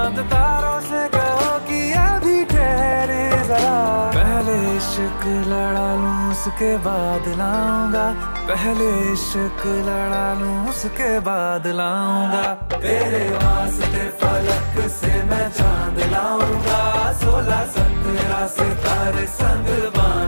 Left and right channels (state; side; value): inverted; both; correlation -1.00